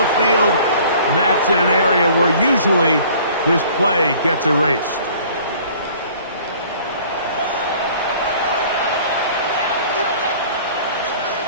field, and that's in an area where usually this play gets erased.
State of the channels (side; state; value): both; inverted; correlation -0.51